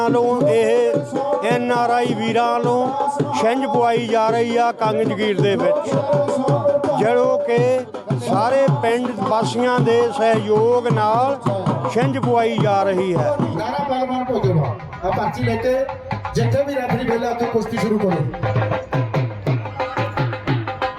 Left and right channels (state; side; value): identical; both; correlation 1.00